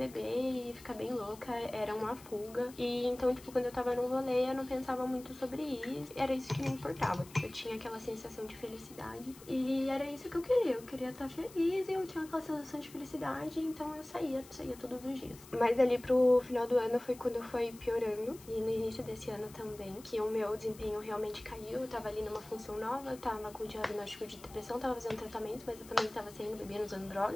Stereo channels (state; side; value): noise; left; hiss, 20 dB below the sound